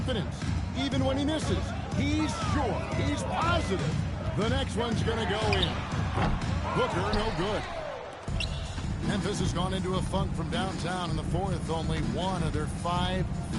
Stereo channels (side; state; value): both; identical; correlation 1.00